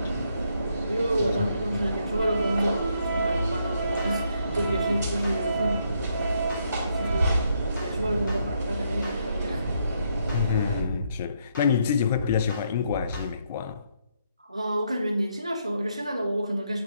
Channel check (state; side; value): inverted; both; correlation -0.75